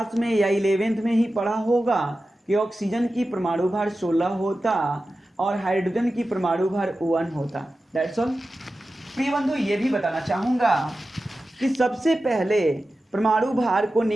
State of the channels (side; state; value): both; normal; correlation 0.94